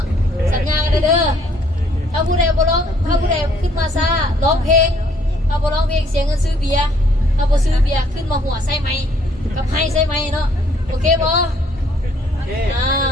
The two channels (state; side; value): normal; both; correlation 0.64